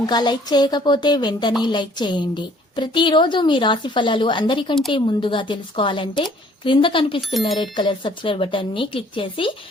లైక్ చేయకపోతే వెంటనే లైక్ చేయండి. ప్రతిరోజు మీ రాశి ఫలాలు అందరికంటే ముందుగా తెలుసుకోవాలంటే క్రింద కనిపిస్తున్న రెడ్ కలర్ సబ్స్క్రైబ్ బటన్ ని క్లిక్ చేసి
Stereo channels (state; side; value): normal; both; correlation 0.58